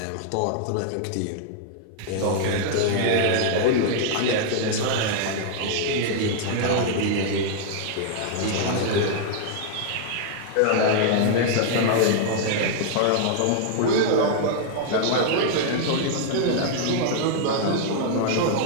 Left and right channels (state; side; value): different; both; correlation -0.01